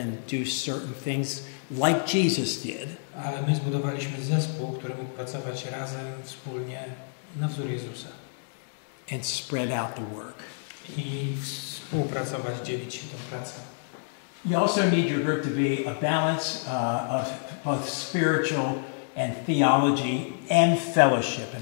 and do certain things like Jesus did. Ale my zbudowaliśmy zespół, który mógł pracować razem, wspólnie, na wzór Jezusa. And spread out the work. I współpracować, dzielić się tą pracą. You also need your group to be a balance of both spiritual and theology and fellowship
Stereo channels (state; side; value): silent; right; 59 dB below the other